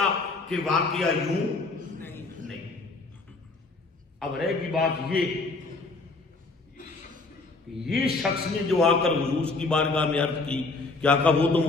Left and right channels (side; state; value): right; quieter; 3.6 dB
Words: کہ واقعہ یوں نہیں. اب رہ گی بات یہ شخص نے جو آ کر حضور کی بارگاہ میں عرض کی کہ آقا وہ تو